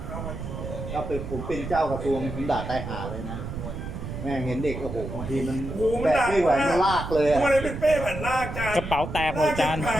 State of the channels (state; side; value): noise; right; rumble, 7 dB below the sound